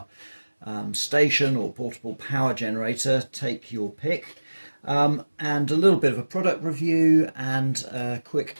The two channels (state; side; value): inverted; both; correlation -1.00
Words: station or portable power generator, take your pick, and a little bit of a product review and a quick